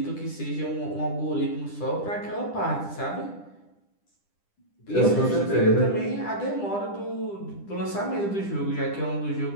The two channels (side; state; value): right; late; 10 ms